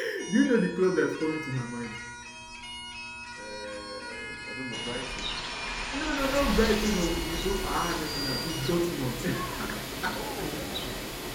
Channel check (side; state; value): both; identical; correlation 1.00